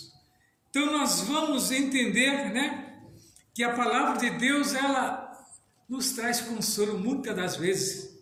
Então nós vamos entender, né, que a palavra de Deus, ela nos traz consolo muitas das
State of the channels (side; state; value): both; identical; correlation 1.00